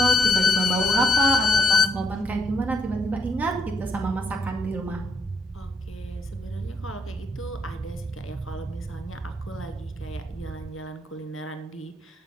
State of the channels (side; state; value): both; normal; correlation 0.72